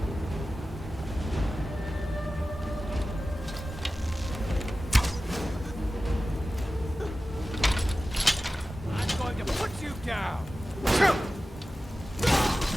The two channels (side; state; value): both; normal; correlation 0.95